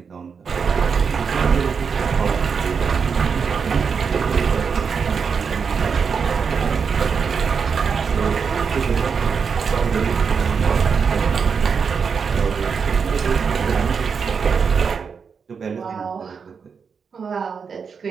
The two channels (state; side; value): quieter; left; 6.0 dB